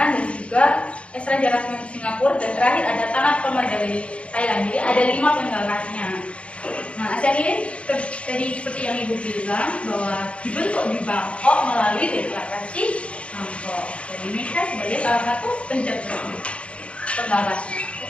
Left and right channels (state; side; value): late; right; 0.060 ms